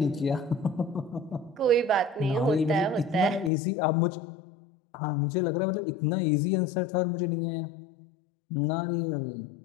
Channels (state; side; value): drops out; right; at 3.5 s